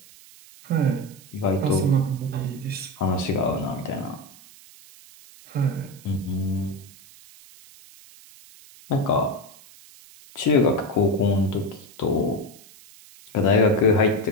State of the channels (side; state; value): right; noise; hiss, 22 dB below the sound